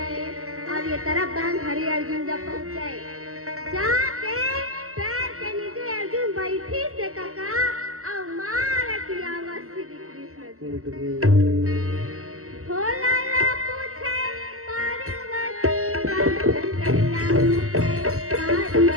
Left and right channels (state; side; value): late; left; 0.63 ms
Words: और ये तरफ बांध हरी अर्जुन जब पहुंचे जाके पैर के नीचे अर्जुन बैठी से काका और मार की आवाज श्री कृष्ण भोला ला पूछे पार्वती